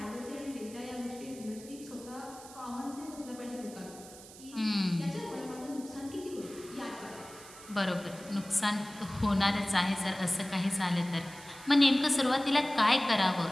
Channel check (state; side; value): noise; right; hiss, 18 dB below the sound